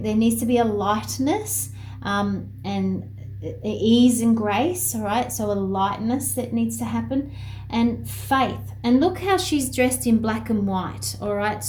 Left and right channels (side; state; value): both; identical; correlation 1.00